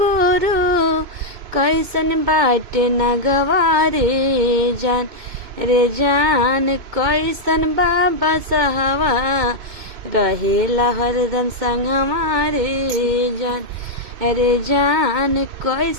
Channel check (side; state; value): left; late; 2.2 ms